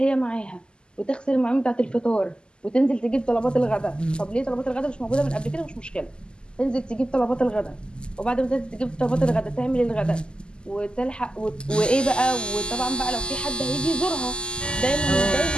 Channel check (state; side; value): late; right; 0.048 ms